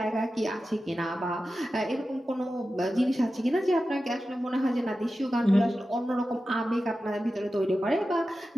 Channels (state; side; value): normal; both; correlation 0.93